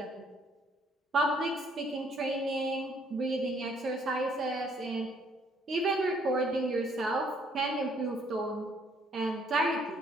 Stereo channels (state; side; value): normal; both; correlation 0.64